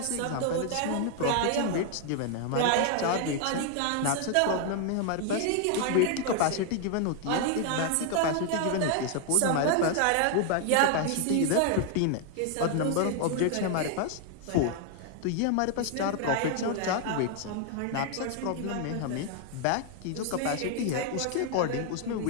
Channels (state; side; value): different; both; correlation 0.00